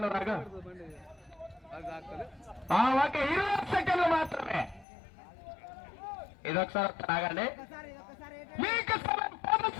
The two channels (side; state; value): right; drops out; at 4.9 s